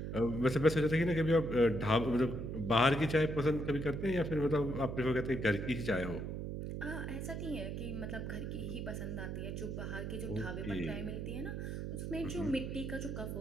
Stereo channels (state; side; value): noise; right; hum, 5 dB below the sound